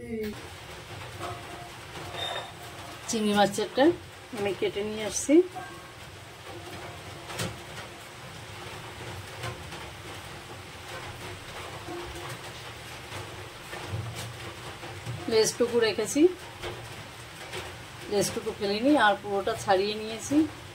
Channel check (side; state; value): both; identical; correlation 1.00